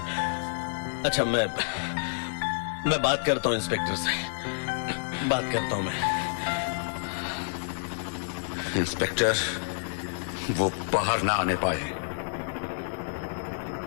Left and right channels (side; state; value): right; silent; 59 dB below the other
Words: अच्छा, मैं बात करता हूं इंस्पेक्टर से। बात करता हूं मैं। इंस्पेक्टर, वो बाहर ना आने पाए।